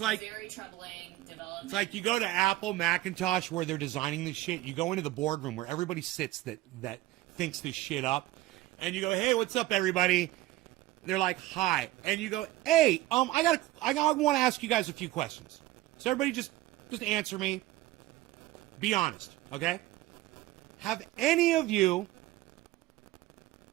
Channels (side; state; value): left; quieter; 16.6 dB